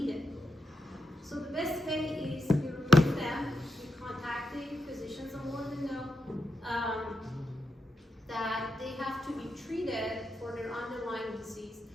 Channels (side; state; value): both; normal; correlation 0.85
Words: So the best way is you remove them, you contact the physicians and let them know that they have to be treated for their underlying disease.